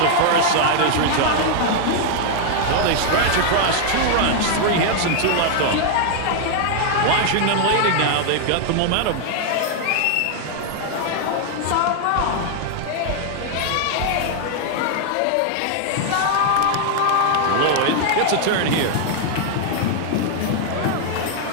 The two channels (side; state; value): both; different; correlation 0.00